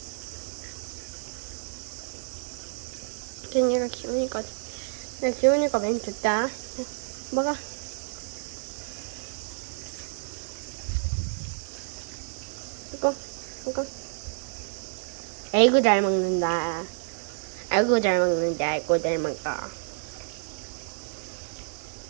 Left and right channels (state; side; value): silent; left; digital silence